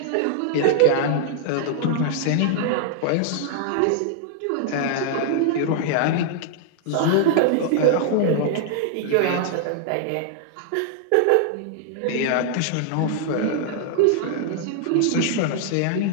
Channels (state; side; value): different; both; correlation -0.01